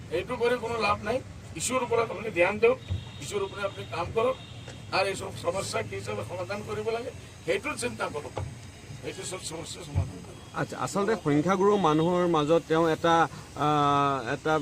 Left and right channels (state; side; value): identical; both; correlation 1.00